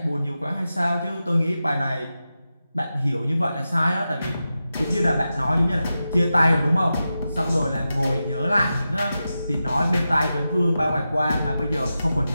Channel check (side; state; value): both; inverted; correlation -0.91